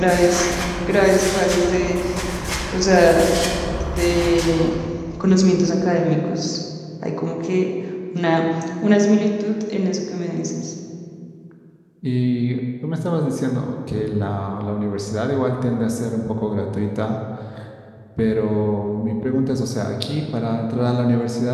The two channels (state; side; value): identical; both; correlation 1.00